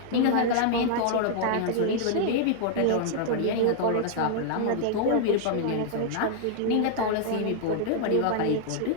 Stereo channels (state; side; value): different; both; correlation -0.01